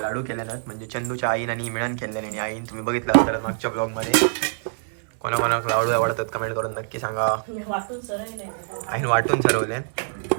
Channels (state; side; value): silent; left; 62 dB below the other